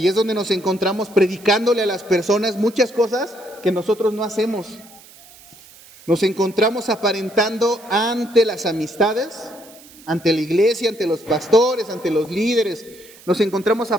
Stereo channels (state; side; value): noise; right; hiss, 22 dB below the sound